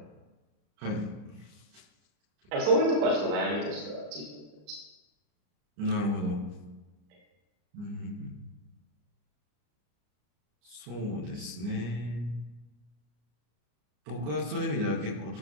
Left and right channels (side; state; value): left; late; 34 ms